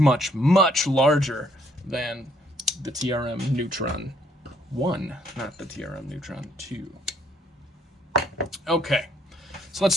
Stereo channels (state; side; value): normal; both; correlation 0.66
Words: much larger than the TRM Neutron 1, not the TRM Neutron 2. Okay, so let's